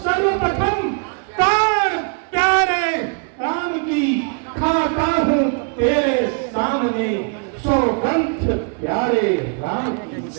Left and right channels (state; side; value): quieter; left; 39.6 dB